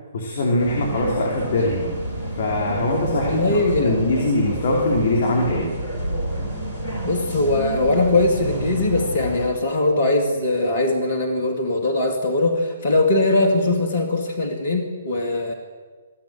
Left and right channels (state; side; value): inverted; both; correlation -0.63